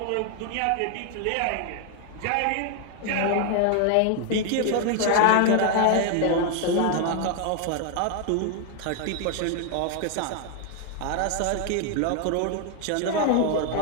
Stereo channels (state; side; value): different; both; correlation 0.00